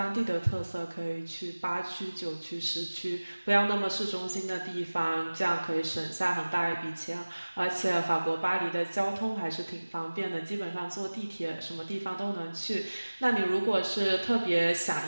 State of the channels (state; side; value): inverted; both; correlation -1.00